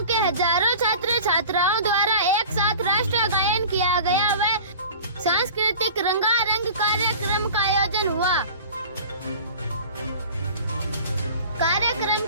के हजारों छात्र छात्राओं द्वारा एक साथ राष्ट्रीय गायन किया गया व सांस्कृतिक रंगारंग कार्यक्रम का आयोजन हुआ। कार्यक्रम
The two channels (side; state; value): both; inverted; correlation -0.40